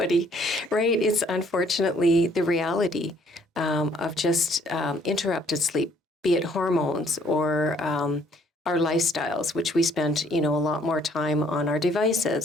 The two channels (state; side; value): normal; both; correlation 0.63